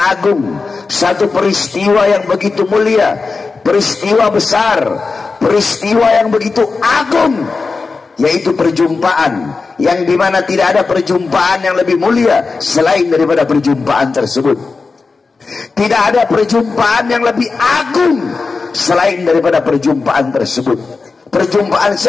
satu peristiwa yang begitu mulia, peristiwa besar, peristiwa yang begitu agung, yaitu perjumpaan yang dimana tidak ada perjumpaan yang lebih mulia selain daripada perjumpaan tersebut. Tidak ada perjumpaan yang lebih agung selain daripada perjumpaan tersebut. Perjumpaan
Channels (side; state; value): right; quieter; 4.3 dB